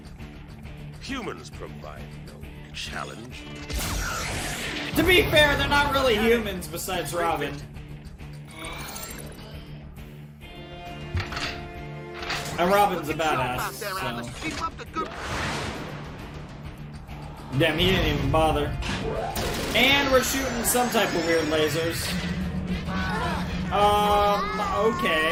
Humans provide no challenge. To be fair, they're not really humans besides Robin. And Robin's a badass, so... Keep up the good. Damn, he didn't even bother. And we're shooting some type of weird lasers.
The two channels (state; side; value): identical; both; correlation 1.00